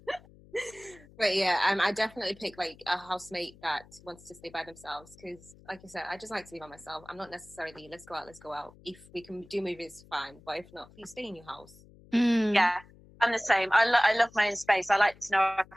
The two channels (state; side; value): noise; left; hum, 24 dB below the sound